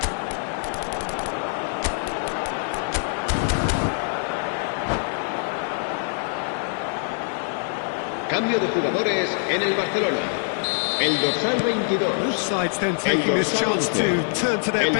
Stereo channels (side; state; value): right; silent; 61 dB below the other